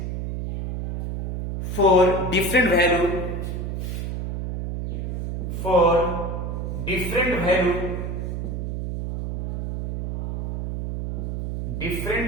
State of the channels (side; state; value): right; noise; hum, 4 dB below the sound